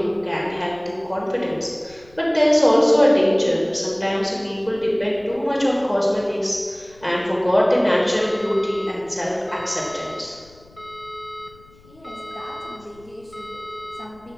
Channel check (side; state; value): left; noise; rumble, 26 dB below the sound